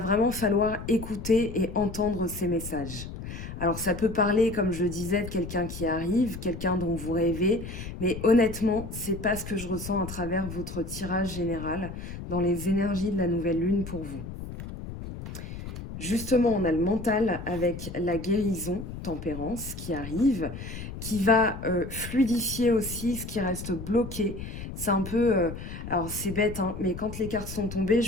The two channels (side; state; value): left; noise; rumble, 9 dB below the sound